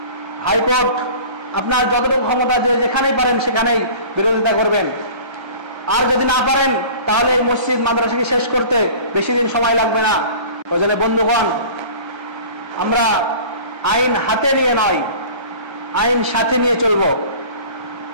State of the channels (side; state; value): left; late; 1.3 ms